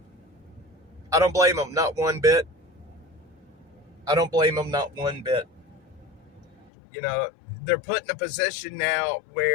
I don't blame them, not one bit. I don't blame them, not one bit. They're put in a position now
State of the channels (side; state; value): right; drops out; at 6.7 s